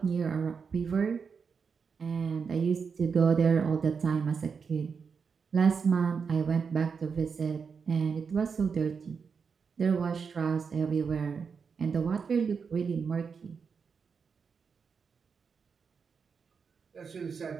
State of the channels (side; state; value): left; quieter; 5.8 dB